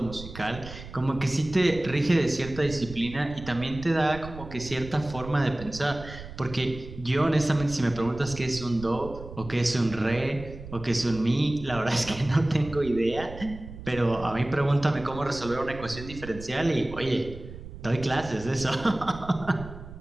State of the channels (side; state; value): right; noise; rumble, 13 dB below the sound